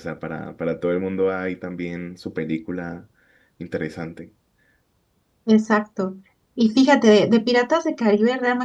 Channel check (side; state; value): both; identical; correlation 1.00